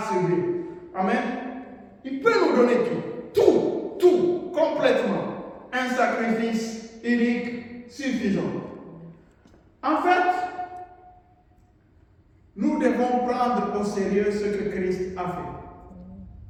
subi. Amen. Il peut nous donner tout, complètement. Un sacrifice unique suffisant. En fait, nous devons prendre au sérieux ce que Christ a fait.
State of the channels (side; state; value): both; identical; correlation 1.00